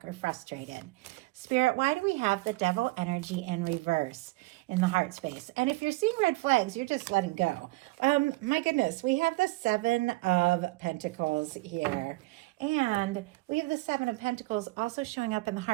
or frustrated. Spirit, why do we have the Devil energy in reverse in the heart space? And if you're seeing red flags, you're just letting go. My goodness, we have the Seven of Pentacles here. And we have the Seven of Pentacles also showing up in the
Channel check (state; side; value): quieter; left; 22.5 dB